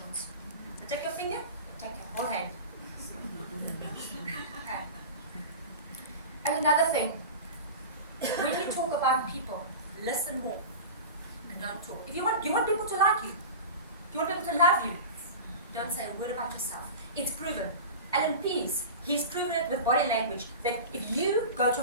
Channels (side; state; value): both; inverted; correlation -0.30